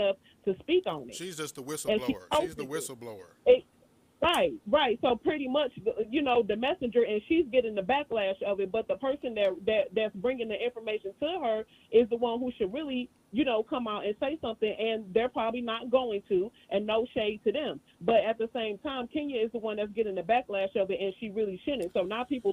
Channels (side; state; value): both; identical; correlation 1.00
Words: to speak on it. She's just the whistleblower. She's the whistleblower. Right. So pretty much, the messenger, and she's getting the backlash of it. But the person that's bringing the information to her is the one who should really, come out and say something. And they're probably not going to, and no shade to them. But at the same time, Kenya is the one that's getting the backlash of it, and she really shouldn't. So now people